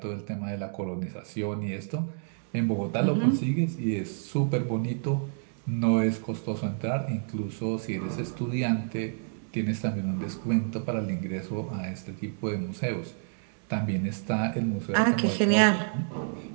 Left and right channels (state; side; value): silent; left; 59 dB below the other